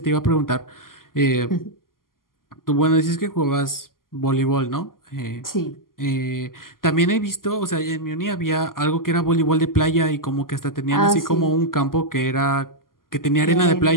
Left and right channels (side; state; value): right; late; 0.91 ms